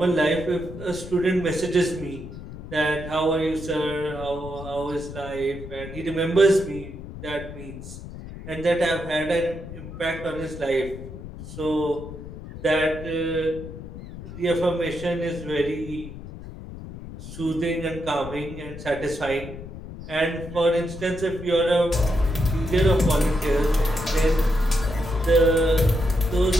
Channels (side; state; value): left; noise; rumble, 12 dB below the sound